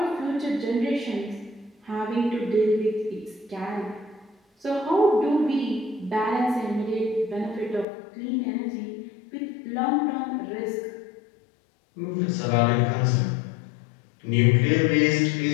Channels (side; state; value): right; drops out; at 7.9 s